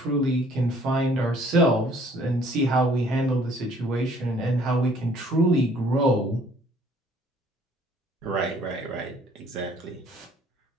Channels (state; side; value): normal; both; correlation 0.58